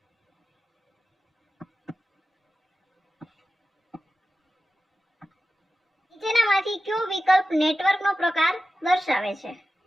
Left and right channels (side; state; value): both; normal; correlation 0.93